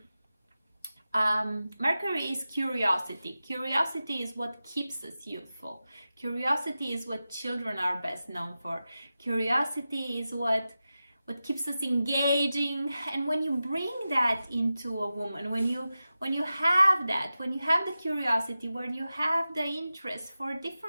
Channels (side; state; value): both; inverted; correlation -0.94